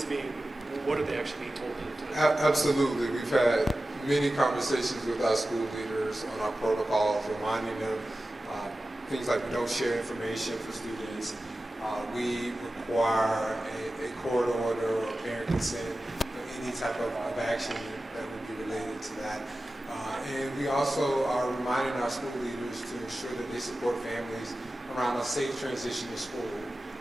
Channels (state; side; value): normal; both; correlation 0.95